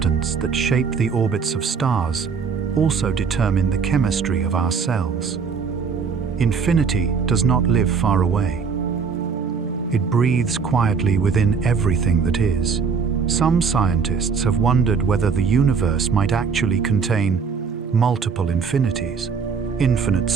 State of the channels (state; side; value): quieter; left; 5.8 dB